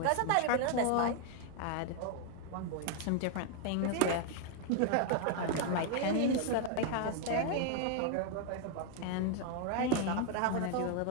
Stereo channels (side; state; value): both; different; correlation 0.01